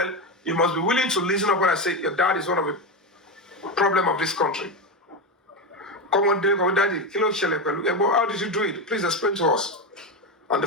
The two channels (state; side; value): normal; both; correlation 0.14